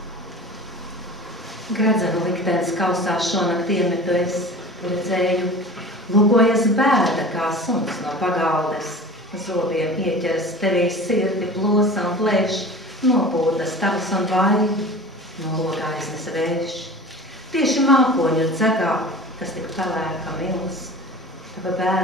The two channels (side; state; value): both; normal; correlation 0.38